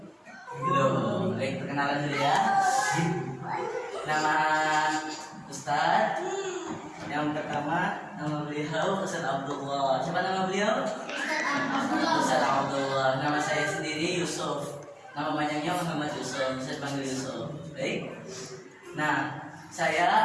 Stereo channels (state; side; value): identical; both; correlation 1.00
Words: Belum. Baik, perkenalan dulu ya. Nama Ustaz yang pertama, nama beliau Ustaz Abdullah. Siapa nama beliau? Ustaz Abdullah. Nama saya sendiri Yusuf. Nama panjangnya Muhammad Yusuf. Saya panggil Yusuf. Baik. Nah,